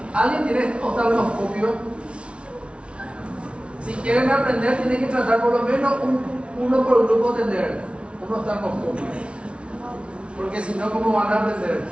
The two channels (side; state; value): left; late; 0.060 ms